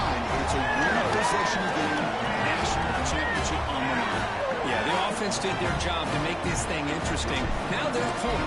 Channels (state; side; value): identical; both; correlation 1.00